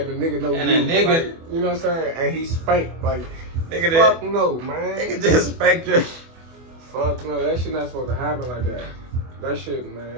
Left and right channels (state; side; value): late; left; 24 ms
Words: the nigga know And you. a nigga, like, you know what I'm saying? And he spanked like. nigga, Fuck no, man. nigga just spanked you. Fuck no, that shit not supposed to happen like that. That shit, man.